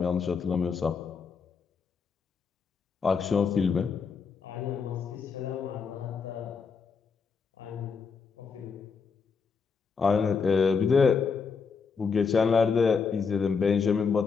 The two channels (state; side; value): quieter; right; 5.5 dB